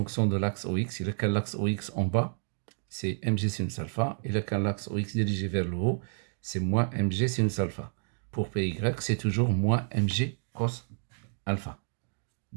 de l'axe OX. Il a qu'un l'axe OX en bas, c'est mg sinus alpha. Il a qu'un l'axe OX dirigé vers le haut, c'est moins mg sinus alpha. Pour Py, c'est toujours moins mg cos alpha.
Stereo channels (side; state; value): left; silent; digital silence